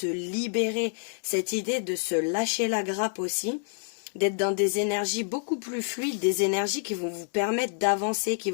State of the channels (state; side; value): silent; right; 59 dB below the other